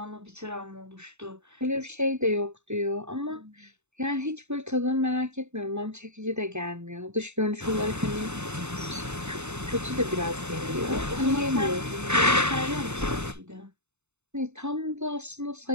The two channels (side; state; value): left; late; 0.82 ms